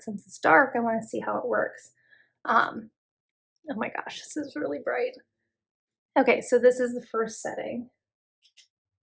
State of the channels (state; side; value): identical; both; correlation 1.00